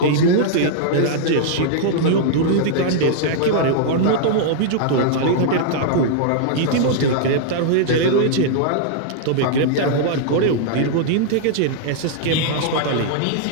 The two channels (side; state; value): both; different; correlation -0.01